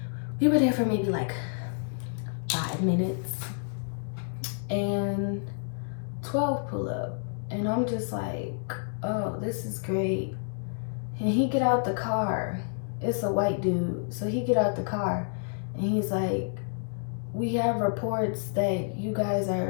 We were there for maybe like 5 minutes and 12 pull up. And I'm just like, oh, this is great. And he get out the car. It's a white dude. So he get out the car and he's like, we have reports that you guys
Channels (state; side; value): silent; right; digital silence